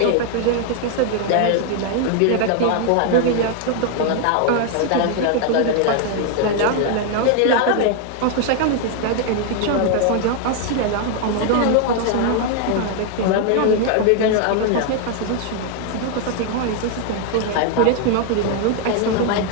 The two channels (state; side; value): different; both; correlation 0.00